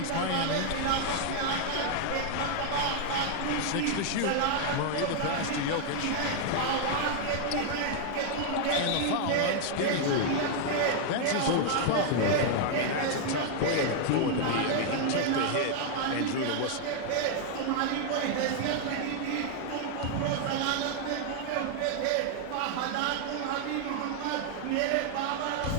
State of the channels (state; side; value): different; both; correlation 0.00